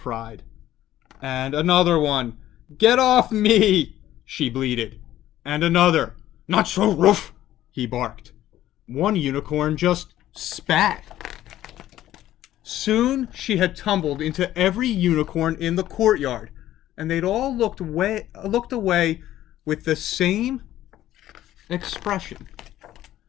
And another one. "Get off me," she bleated. And another. "Not so rough," he barked. One unicorn just spat. Soon she had tumbled into every unicorn in the courtyard, and they'd all looked away with the same expression.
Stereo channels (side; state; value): right; quieter; 13.4 dB